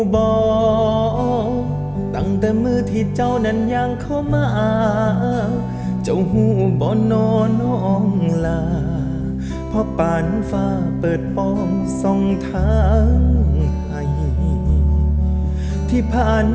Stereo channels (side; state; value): both; identical; correlation 1.00